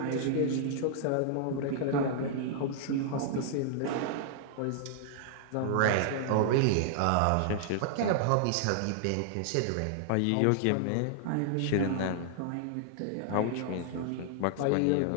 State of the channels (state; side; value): different; both; correlation -0.01